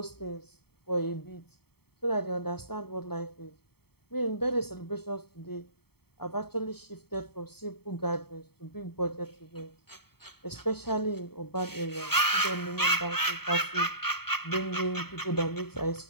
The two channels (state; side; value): late; right; 0.96 ms